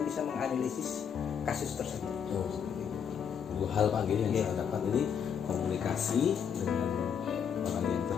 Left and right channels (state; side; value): quieter; right; 7.6 dB